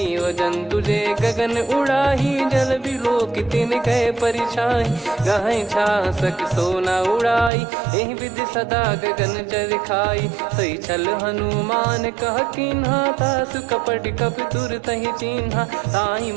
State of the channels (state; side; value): drops out; left; at 7.5 s